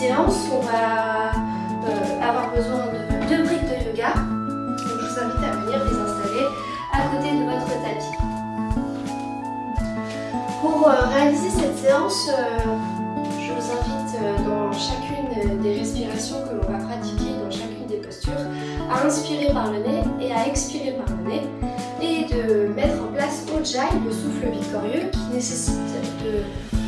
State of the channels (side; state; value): both; identical; correlation 1.00